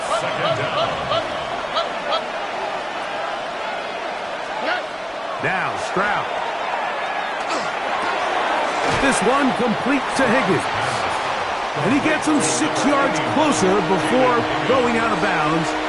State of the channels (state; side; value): identical; both; correlation 1.00